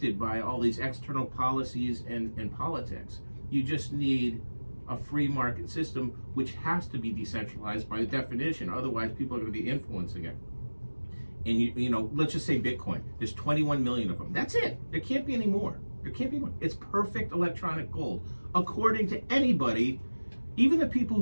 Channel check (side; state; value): both; inverted; correlation -1.00